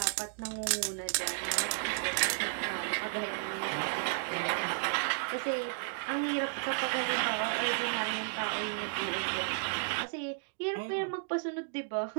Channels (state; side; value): silent; left; digital silence